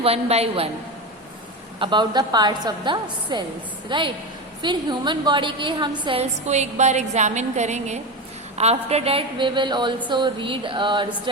one by one about the parts of the cells, right. फिर ह्यूमन बॉडी के हम सेल्स को एक बार एग्जामिन करेंगे। After that we will also read और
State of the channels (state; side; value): normal; both; correlation 0.20